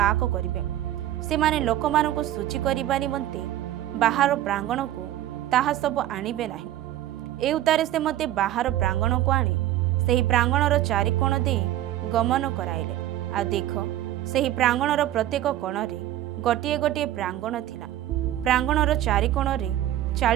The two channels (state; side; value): quieter; left; 13.2 dB